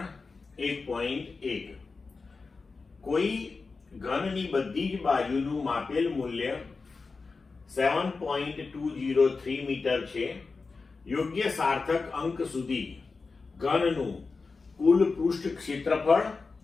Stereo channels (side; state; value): right; quieter; 4.3 dB